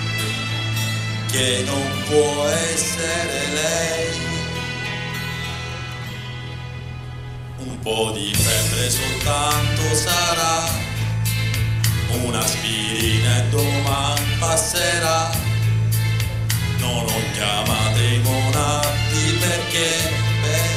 che non può essere lei. Un po' di febbre soltanto sarà, un'aspirina e domani passerà. Non ho chiamato i monatti perché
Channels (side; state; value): both; identical; correlation 1.00